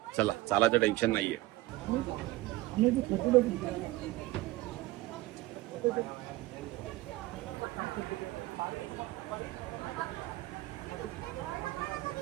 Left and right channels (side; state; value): left; quieter; 18.0 dB